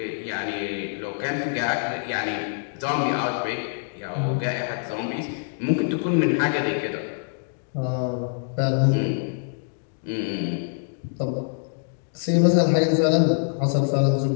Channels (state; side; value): silent; right; digital silence